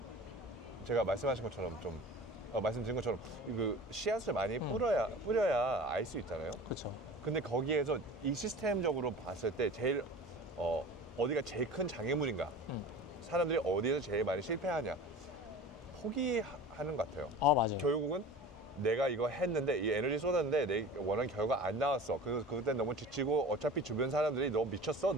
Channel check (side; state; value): both; normal; correlation 0.38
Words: 제가 말씀하신 것처럼 좀 말씀드린 것처럼 그 씨앗을 많이 뿌려야 알 수 있잖아요. 그렇죠. 근데 거기에서 이 시스템적으로 봤을 때 제일 어디가 제일 큰 장애물인가? 사람들이 어디에서 제일 많이 실패하냐? 포기하는 것 같아요. 맞아요. 결국은 내가 이거 했는데 이 에너지 쏟았는데 내 원하는 결과 안 나왔어. 그때 너무 지치고 어차피 주변 사람들이 너 미쳤어?